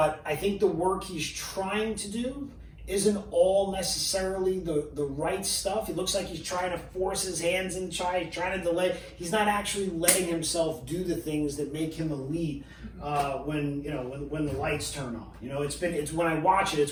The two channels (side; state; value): both; identical; correlation 1.00